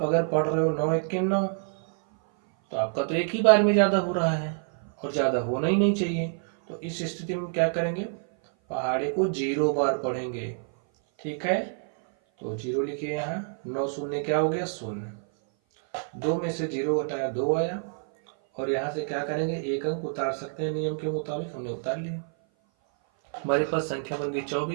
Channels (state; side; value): silent; left; 56 dB below the other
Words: अगर पढ़ रहे हो 9 1 के 9, तो आपका तो एक ही बार में ज़्यादा हो रहा है और ज़्यादा होना ही नहीं चाहिए। तो इस स्थिति में क्या करेंगे, पहाड़े को 0 बार पढ़ेंगे, ठीक है। तो 0 लिखिए यहाँ। 9 शून्य क्या हो गया 0। 2 में से 0 घटाया 2 आया, और यहाँ से क्या करेंगे, 1 अंक उतार सकते हैं नियम के मुताबिक, हमने उतार लिया। हमारे पास संख्या बन गई